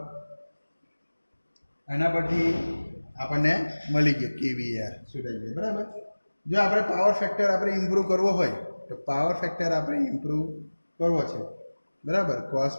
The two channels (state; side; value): inverted; both; correlation -1.00